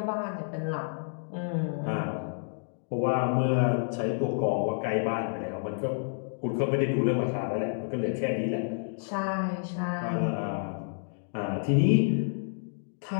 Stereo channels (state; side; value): silent; right; digital silence